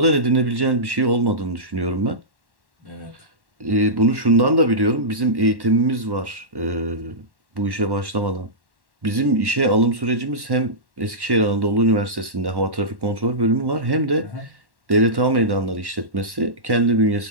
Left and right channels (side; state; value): left; late; 1.1 ms